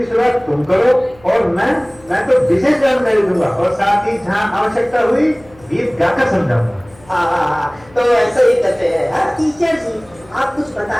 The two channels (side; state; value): left; noise; hum, 26 dB below the sound